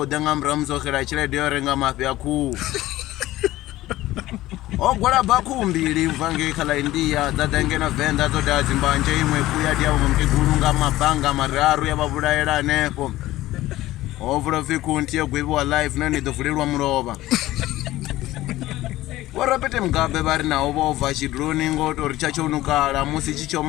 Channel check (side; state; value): right; quieter; 16.3 dB